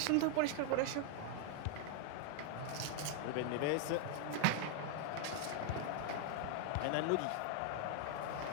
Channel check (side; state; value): both; different; correlation 0.00